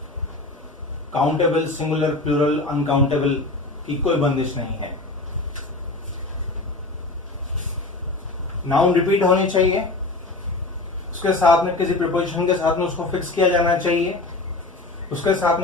काउंटेबल, सिंगुलर, प्लूरल, अनकाउंटेबल की कोई बंदिश नहीं है। नाउन रिपीट होनी चाहिए, उसके साथ में किसी प्रीपोजिशन के साथ में उसको फिक्स किया जाना चाहिए, उसके साथ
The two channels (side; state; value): right; quieter; 3.1 dB